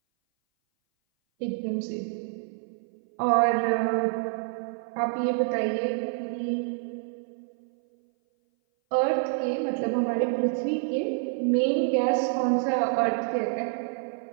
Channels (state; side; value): silent; left; 57 dB below the other